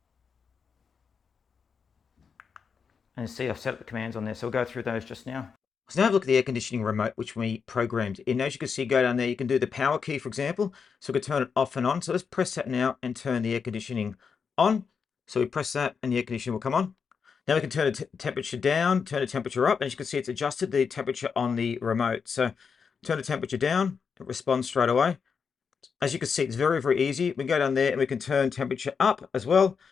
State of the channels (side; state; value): right; quieter; 6.0 dB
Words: and see I've set up the commands on there. So we'll go through those just now. So now have a look at the air conditioning remote, which we programmed in. As you can see, go down there, you can do the power key, for example. So we can turn it off and on. So let's press that now and turn the air conditioning on. So we press that and the air conditioning will come on. Now we can turn the temperature down, turn the temperature up. And as you can see, it's adjusted the temperature on the remote. So turn the temperature down, it responds straight away. As you can see, it's very easy. We can go down there and we can turn temperature up as well.